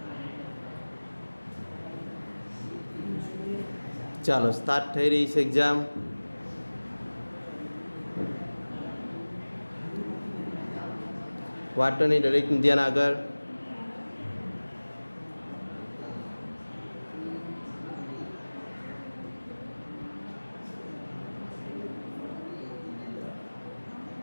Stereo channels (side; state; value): both; inverted; correlation -1.00